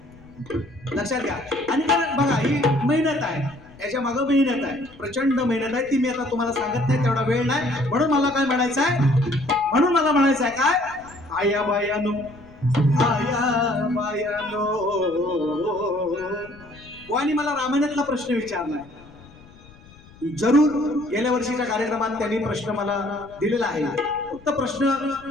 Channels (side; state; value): left; noise; rumble, 23 dB below the sound